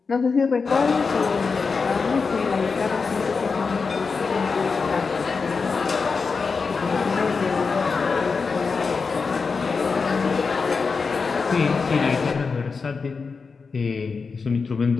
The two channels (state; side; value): quieter; right; 4.9 dB